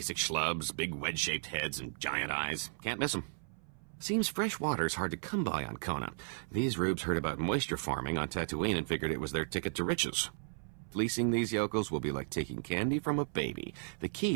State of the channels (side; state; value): left; silent; 55 dB below the other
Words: schlubs, big wedge-shaped heads and giant eyes. Can't miss them. Seems fresh water's hard to come by on Kona. These rubes heard about moisture farming on Tatooine and figured it was their ticket to riches. Fleecing these yokels will be like taking candy from a baby. The